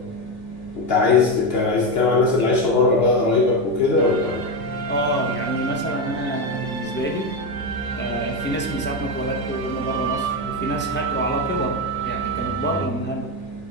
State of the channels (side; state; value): both; normal; correlation 0.12